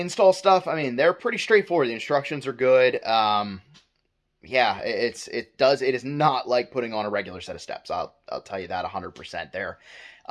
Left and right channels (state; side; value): identical; both; correlation 1.00